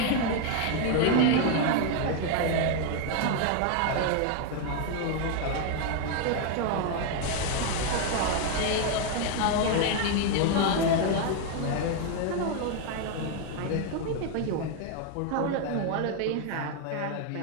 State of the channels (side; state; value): both; different; correlation 0.01